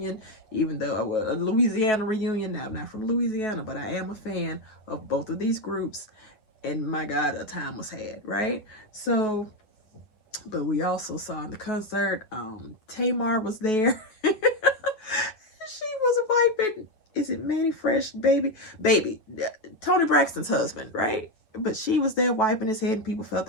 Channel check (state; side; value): late; right; 9.6 ms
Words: even though a Louisiana reunion. Now, I'm not from Louisiana, but I am a fan of both of these groups, and my God, a time was had, right? So, but we also saw in the concert, Tamar was there. She was wiping, is it Manny Fresh, baby, Tony Braxton's husband, right? But she was there wiping his head, and people felt